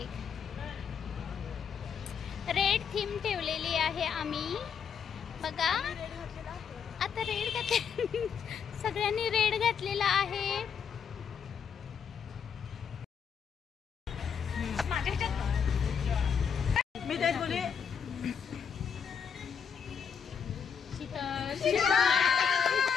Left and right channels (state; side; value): quieter; right; 7.1 dB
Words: रेड थीम ठेवलेली आहे आम्ही, बघा आता रेड घातले सगळ्यांनी रेड घातलेला आहे। मी तेच बोले